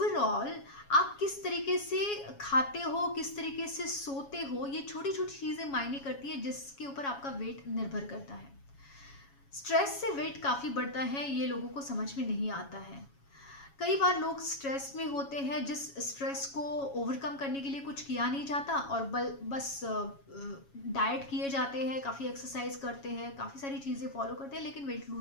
आप किस तरीके से खाते हो, किस तरीके से सोते हो, ये छोटी छोटी चीज़ें मायने करती है, जिसके ऊपर आपका वेट निर्भर करता है। स्ट्रेस से वेट काफ़ी बढ़ता है, ये लोगों को समझ में नहीं आता है। कई बार लोग स्ट्रेस में होते हैं, जिस स्ट्रेस को ओवरकम करने के लिए कुछ किया नहीं जाता और बस डाइट किए जाते हैं, काफ़ी एक्सरसाइज करते हैं, काफ़ी सारी चीज़ें फॉलो करते हैं, लेकिन वेट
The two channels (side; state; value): right; late; 7.2 ms